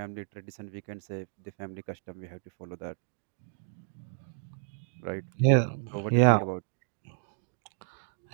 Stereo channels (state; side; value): silent; left; digital silence